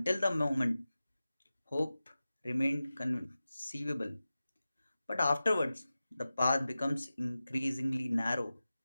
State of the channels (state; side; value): inverted; both; correlation -0.95